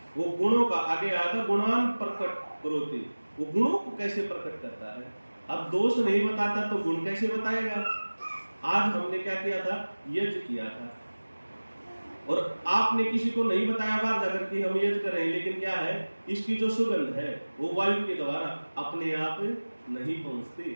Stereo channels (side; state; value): both; inverted; correlation -1.00